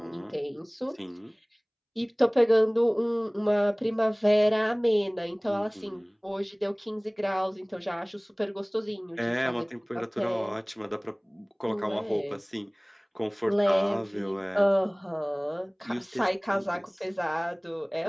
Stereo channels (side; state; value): both; identical; correlation 1.00